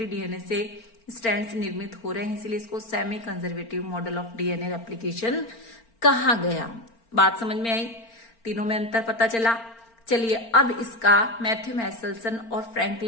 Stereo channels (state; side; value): late; right; 4.4 ms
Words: डीएनए से स्ट्रैंड्स निर्मित हो रहे हैं, इसलिए इसको semi conservative model of DNA replication कहा गया। बात समझ में आई, तीनों में अंतर पता चला। चलिए अब इसका मैथ्यू मैसेल्सन और